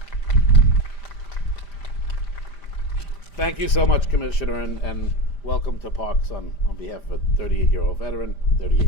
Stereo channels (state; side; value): late; right; 5.0 ms